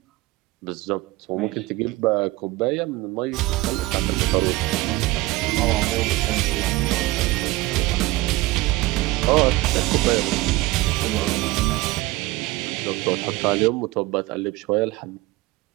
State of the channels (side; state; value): left; quieter; 19.6 dB